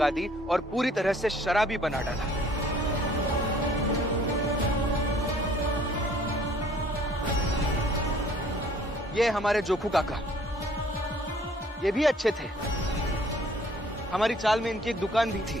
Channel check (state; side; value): normal; both; correlation 0.57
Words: दी और पूरी तरह से शराबी बना डाला। ये हमारे जोखू काका, ये भी अच्छे थे। हमारी चाल में इनकी एक दुकान भी